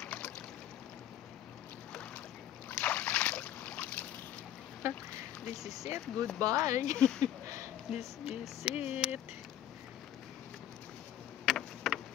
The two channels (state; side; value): quieter; right; 11.5 dB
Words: This is it. Goodbye. This is it.